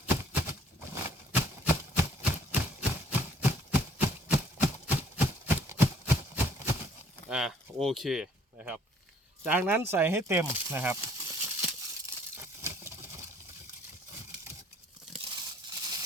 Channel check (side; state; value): both; normal; correlation 0.61